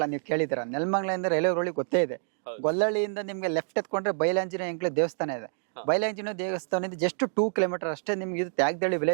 ನೀವು ಕೇಳಿದಿರ, ನೆಲಮಂಗಲದಿಂದ ರೈಲ್ವೆ ರೋಡ್ ಗೊತ್ತೇ ಇದೆ. ಗೊಲ್ಲಳ್ಳಿಯಿಂದ ನಿಮ್ಗೆ ಲೆಫ್ಟ್ ಎತ್ಕೊಂಡ್ರೆ ಬಯಲಾಂಜನೇಯ ಎಂಕ್ಲೆ ದೇವಸ್ಥಾನ ಇದೆ. ಬಯಲಾಂಜನೇಯ ದೇವಸ್ಥಾನದಿಂದ ಜಸ್ಟ್ 2 ಕಿಲೋಮೀಟರ್ ಅಷ್ಟೇ ನಿಮ್ಗೆ ಇದು ತ್ಯಾಗದಳ್ಳಿ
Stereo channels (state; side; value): silent; left; digital silence